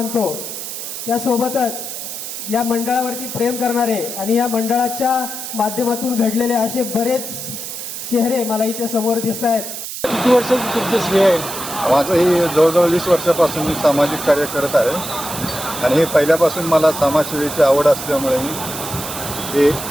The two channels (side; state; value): right; noise; hiss, 7 dB below the sound